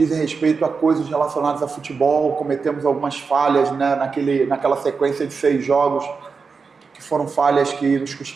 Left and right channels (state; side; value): quieter; left; 5.0 dB